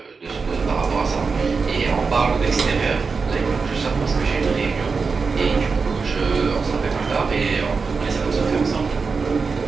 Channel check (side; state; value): left; quieter; 4.8 dB